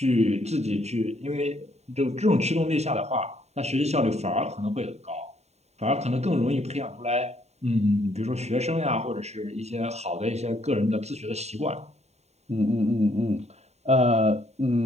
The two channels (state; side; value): late; left; 0.32 ms